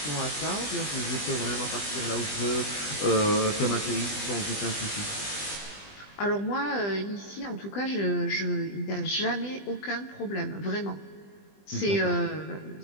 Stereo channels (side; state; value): right; late; 20 ms